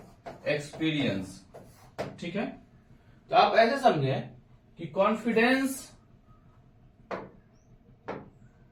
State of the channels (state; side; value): identical; both; correlation 1.00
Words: एक्सपीरियंस, ठीक है। तो आप ऐसे समझे कि कॉन्फिडेंस